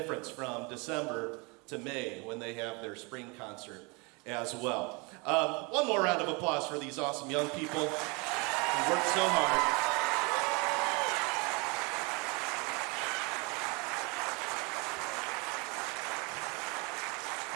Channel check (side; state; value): left; quieter; 29.4 dB